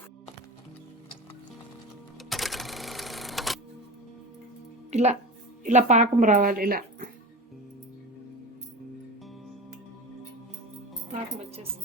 ఇలా ఇలా పాకం రావాలి. ఇలా పాకం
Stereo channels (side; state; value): both; normal; correlation 0.29